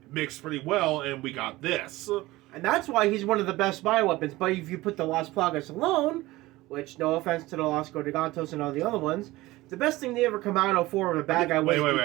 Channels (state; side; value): quieter; left; 18.9 dB